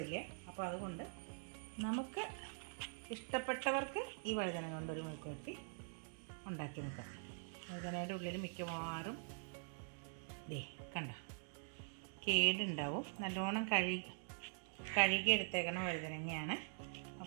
അപ്പോൾ അതുകൊണ്ട് നമുക്ക് ഇഷ്ടപ്പെട്ടവർക്ക് ഈ വഴുതന കൊണ്ടൊരു മെഴുക്കുവരട്ടി ഉണ്ടാക്കി നോക്കാം. വഴുതനയുടെ ഉള്ളിൽ മിക്കവാറും കണ്ട കേടുണ്ടാവും. നല്ലോണം കഴുകി എടുത്തേക്കണ വഴുതനങ്ങയാണ്.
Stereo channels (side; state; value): left; silent; digital silence